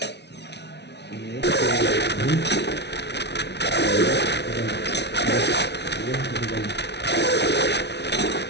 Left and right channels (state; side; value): late; right; 0.50 ms